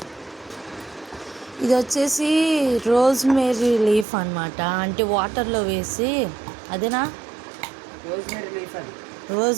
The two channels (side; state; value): left; drops out; at 4.0 s